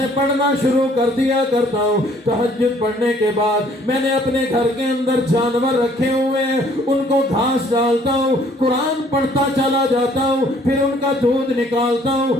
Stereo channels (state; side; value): normal; both; correlation 0.60